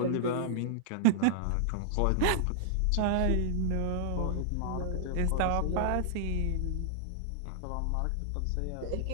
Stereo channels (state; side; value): different; both; correlation -0.01